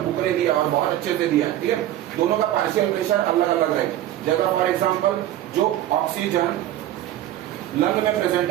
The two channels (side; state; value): left; quieter; 13.0 dB